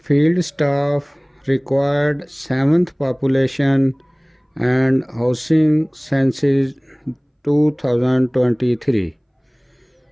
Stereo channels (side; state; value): both; identical; correlation 1.00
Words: field staff required 7th population and housing census 2023،